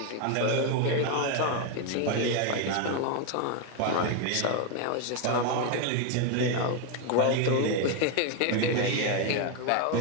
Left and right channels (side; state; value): both; different; correlation 0.01